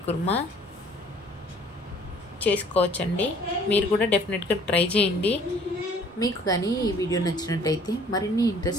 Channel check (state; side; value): normal; both; correlation 0.55